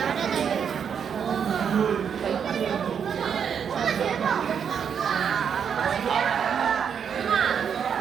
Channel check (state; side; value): quieter; left; 7.5 dB